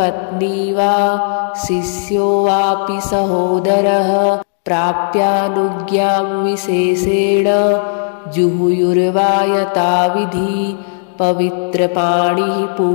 वा शिष्यो वापि सहोदरः प्राप्यानुज्ञां विशेषेण जुहुयुर्वा यथाविधि पवित्रपाणिः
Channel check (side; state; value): right; silent; 62 dB below the other